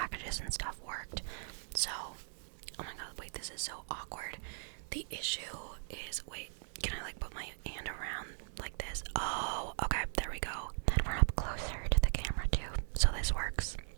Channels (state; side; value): silent; left; digital silence